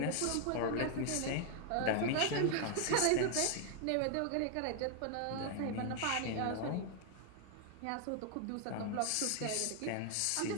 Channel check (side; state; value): both; different; correlation 0.00